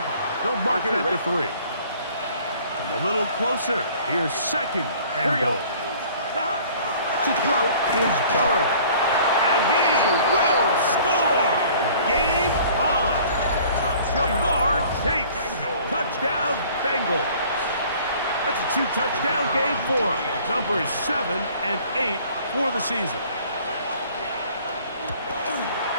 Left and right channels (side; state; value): both; inverted; correlation -0.52